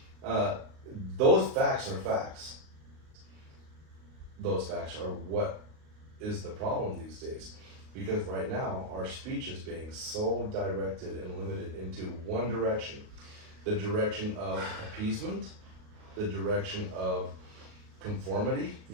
Those facts are facts. Those facts are what is the problem these days. Because right now, our speech is being so directed and limited into one direction. The direction of appeasement, the direction of conformity.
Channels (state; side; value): late; left; 38 ms